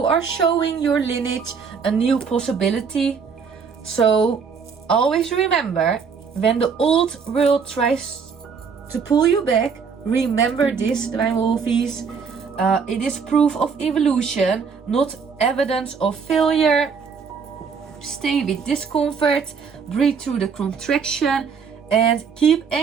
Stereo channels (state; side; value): quieter; left; 5.9 dB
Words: are showing your lineage a new possibility. So always remember, when the old world tries to pull you back, remember this, Divine Wolfeys. It is proof of evolution, not evidence of failure. Stay with discomfort, breathe through the contraction, and keep